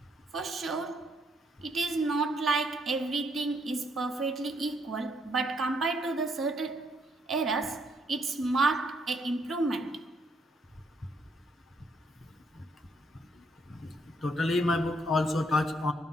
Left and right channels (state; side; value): normal; both; correlation 0.72